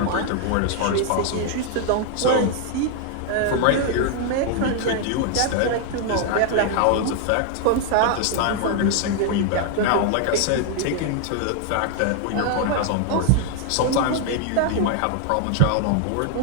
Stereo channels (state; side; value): different; both; correlation 0.00